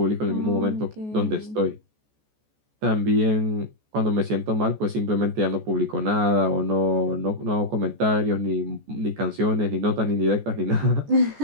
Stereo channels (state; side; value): late; left; 14 ms